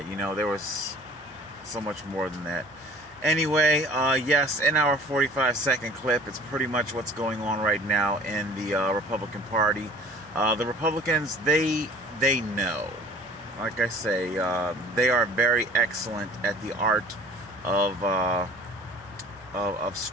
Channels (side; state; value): right; noise; hum, 29 dB below the sound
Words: you know, there was so much more than that. Anyway, yes, in our 45-second clip, it's pretty much what's going on right now in the Republican Party. The Republicans, they know. Like I say, they are very excellent at the art of